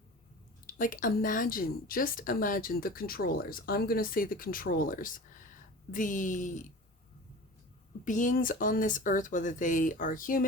like just imagine the controllers. I'm going to say the controllers. The beings on this earth, whether they are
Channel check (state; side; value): normal; both; correlation 0.37